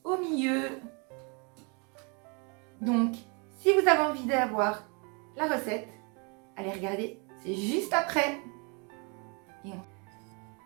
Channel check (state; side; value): quieter; left; 33.4 dB